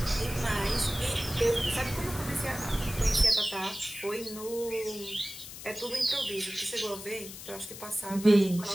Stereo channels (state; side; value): noise; left; hiss, 12 dB below the sound